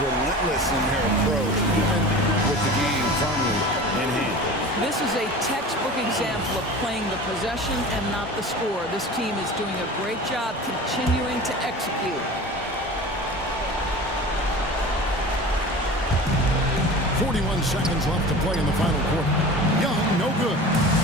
in their approach, even with the game firmly in hand. This is a textbook example of playing the possession and not the score. This team is doing a great job continuing to execute. 41 seconds left to play in the final quarter. Young, no good.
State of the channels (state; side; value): normal; both; correlation 0.37